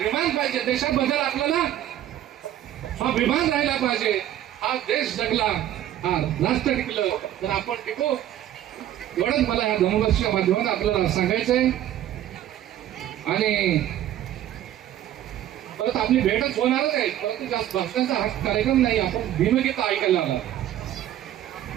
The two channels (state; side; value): quieter; left; 12.2 dB